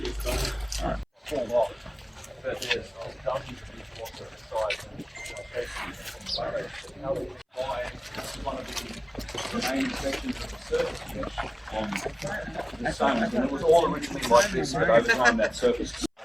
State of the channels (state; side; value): identical; both; correlation 1.00